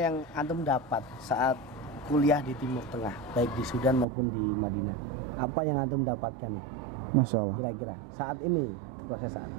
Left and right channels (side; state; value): left; drops out; at 4.0 s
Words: antum dapat saat kuliah di Timur Tengah, baik di Sudan maupun di Madinah? Apa yang antum dapatkan nih? Masya Allah. Kira-kira saat ini, proses saat